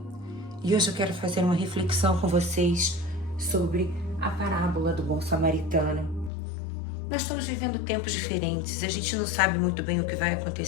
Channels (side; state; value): right; drops out; at 6.3 s